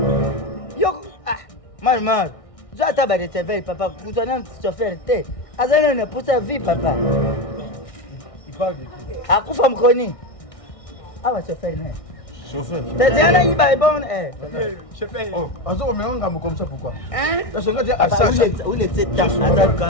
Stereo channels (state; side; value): late; right; 1.6 ms